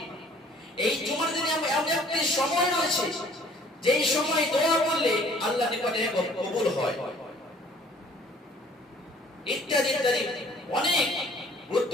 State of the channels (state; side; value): normal; both; correlation 0.56